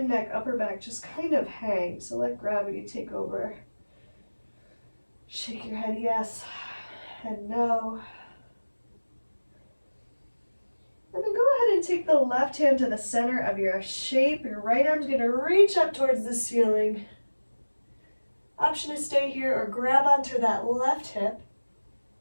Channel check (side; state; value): both; inverted; correlation -1.00